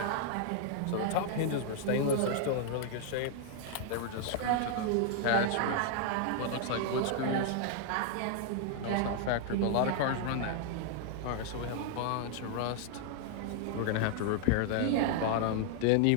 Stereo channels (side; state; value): both; different; correlation 0.00